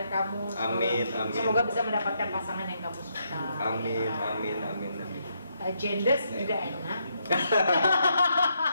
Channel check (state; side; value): inverted; both; correlation -0.77